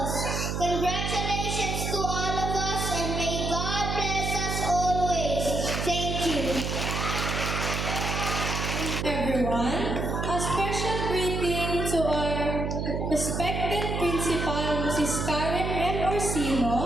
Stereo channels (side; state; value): right; noise; hum, 2 dB below the sound